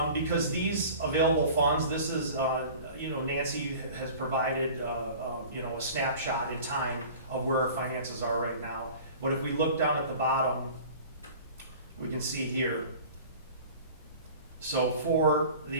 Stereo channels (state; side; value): inverted; both; correlation -0.42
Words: because these available funds, this is, Nancy has provided, a snapshot in time of where our finances are right now. But if we look down at the bottom, we can see here. So for